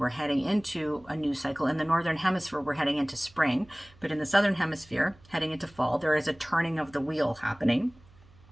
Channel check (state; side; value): noise; right; hum, 26 dB below the sound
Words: heading into a new cycle. In the Northern Hemisphere, we're heading into spring. But in the Southern Hemisphere, heading into fall, there is a turning of the wheel happening.